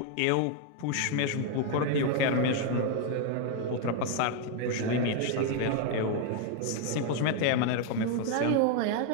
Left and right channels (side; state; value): both; different; correlation 0.00